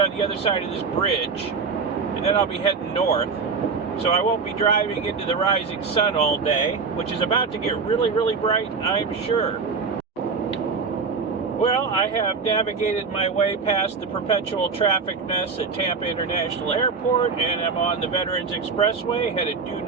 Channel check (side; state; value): left; quieter; 5.0 dB